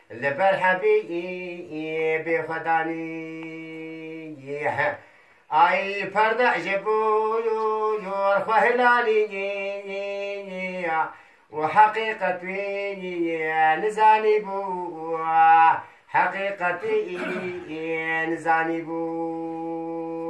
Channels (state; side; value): identical; both; correlation 1.00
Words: لبرحبي بخداني أي فرد عجبو يرخو هلالي وحقيقتي نزاني بو حقيقتي نزاني